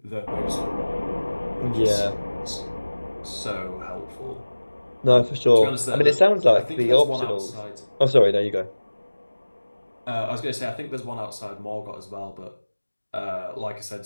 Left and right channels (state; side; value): inverted; both; correlation -1.00